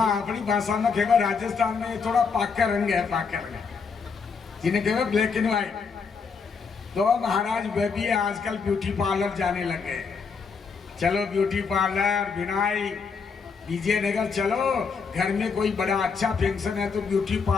अपनी भाषा में कहेगा राजस्थान में थोड़ा पाका रंग है, पाका रंग, जिन्हें कहेगा ब्लैक एंड व्हाइट। तो महाराज वे भी आजकल ब्यूटी पार्लर जाने लगे। चलो ब्यूटी पार्लर, बिनाई, विजयनगर, चलो घर में कोई बड़ा अच्छा फंक्शन है तो ब्यूटी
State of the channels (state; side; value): quieter; right; 5.4 dB